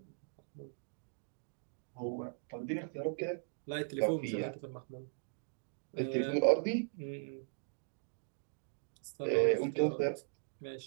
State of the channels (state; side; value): silent; left; digital silence